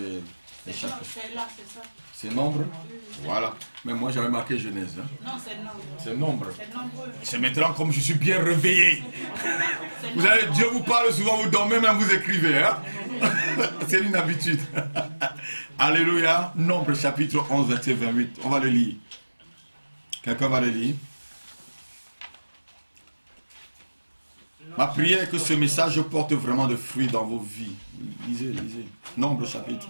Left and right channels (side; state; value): both; inverted; correlation -1.00